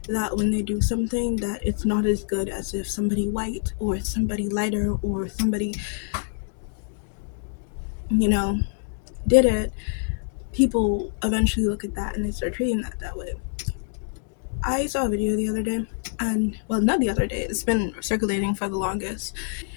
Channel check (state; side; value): silent; right; digital silence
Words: that when they do something that it's not as good as if somebody white or somebody lighter or somebody, did it, people eventually look at that and they start treating that way. I saw a video the other day, and well, not the other day, it's been circulating for the longest,